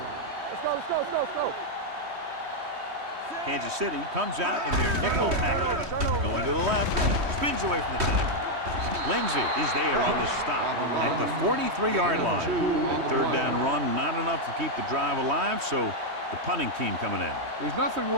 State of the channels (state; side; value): late; left; 3.1 ms